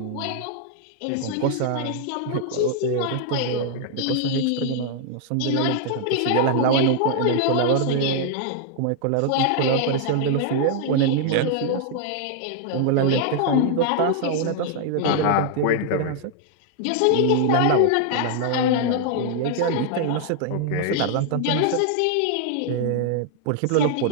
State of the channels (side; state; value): both; different; correlation 0.00